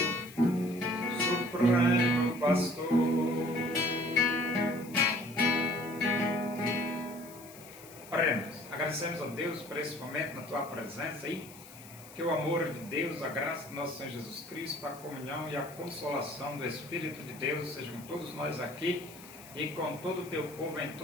Supremo Pastor. Oremos. Agradecemos a Deus por esse momento na tua presença aí. Que o amor de Deus, a graça do nosso Senhor Jesus Cristo, a comunhão e a consolação do Espírito de Deus sejam todos nós aqui e com todo o teu povo em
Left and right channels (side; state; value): left; noise; hiss, 19 dB below the sound